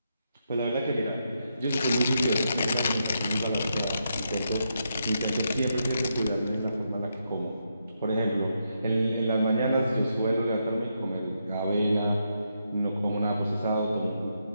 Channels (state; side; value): inverted; both; correlation -0.82